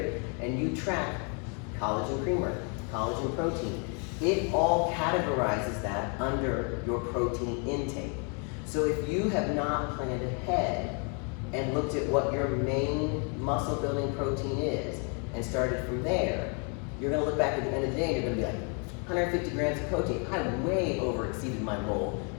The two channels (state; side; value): quieter; right; 37.5 dB